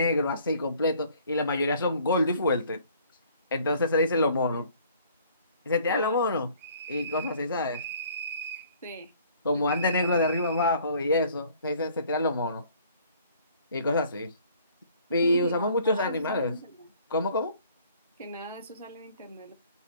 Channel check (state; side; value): inverted; both; correlation -0.56